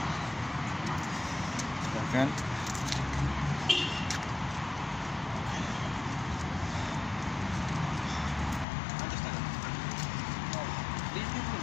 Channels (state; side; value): drops out; right; at 8.7 s